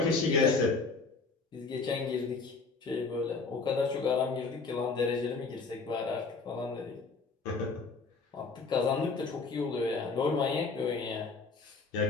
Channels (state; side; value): quieter; right; 4.3 dB